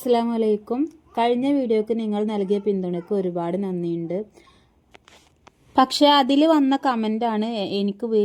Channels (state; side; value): identical; both; correlation 1.00